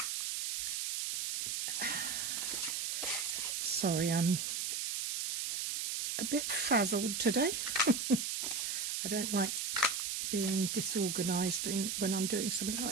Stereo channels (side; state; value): right; noise; hiss, 1 dB below the sound